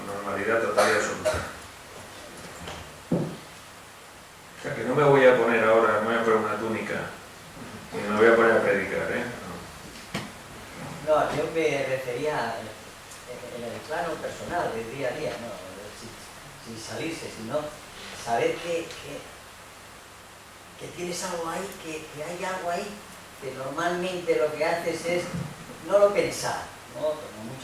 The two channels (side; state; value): both; identical; correlation 1.00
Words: normalidad total y absoluta. O sea que no me voy a poner ahora, no me voy a poner una túnica y me voy a poner a predicar, ¿eh? No, yo me refería en el plano personal, del día a día, ¿no? Sin salirse, sino saber que tienes algo ahí, que hay algo ahí, que normalmente lo que haces es no lo pensar, ¿no? Como